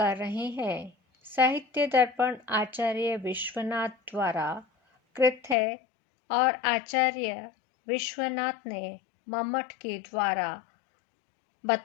रहे हैं। साहित्य दर्पण आचार्य विश्वनाथ द्वारा कृत है और आचार्य विश्वनाथ ने मम्मट के द्वारा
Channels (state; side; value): drops out; right; at 5.6 s